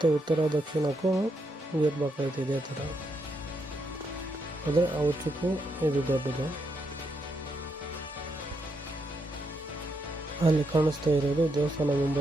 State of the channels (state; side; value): normal; both; correlation 0.80